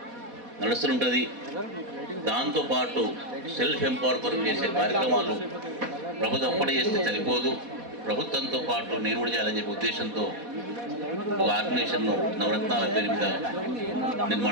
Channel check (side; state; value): left; late; 4.1 ms